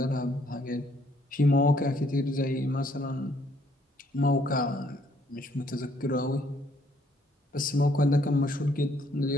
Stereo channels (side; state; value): both; normal; correlation 0.67